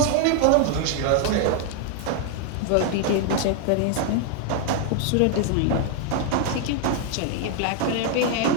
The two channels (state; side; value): different; both; correlation 0.00